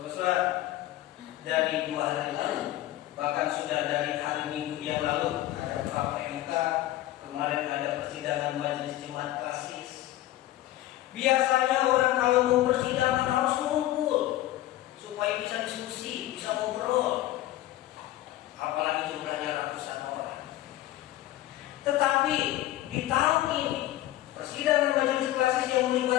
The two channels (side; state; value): right; quieter; 15.0 dB